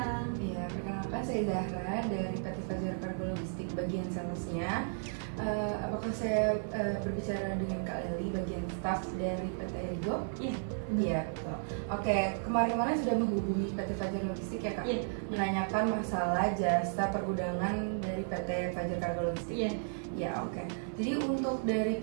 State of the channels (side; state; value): left; silent; digital silence